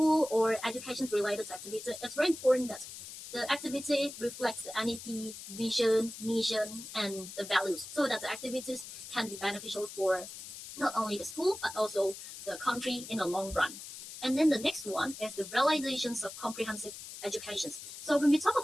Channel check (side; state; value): left; noise; hiss, 12 dB below the sound